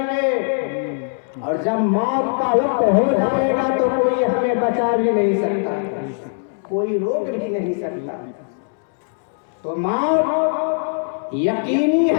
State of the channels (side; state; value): right; silent; 65 dB below the other